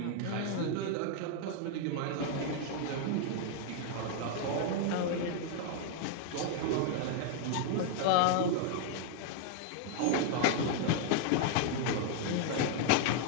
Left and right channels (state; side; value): different; both; correlation 0.00